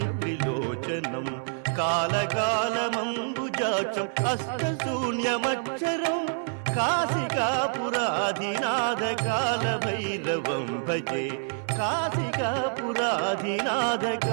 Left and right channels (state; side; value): silent; left; 60 dB below the other